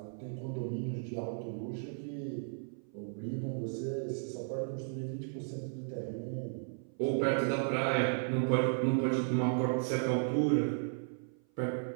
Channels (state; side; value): silent; left; 55 dB below the other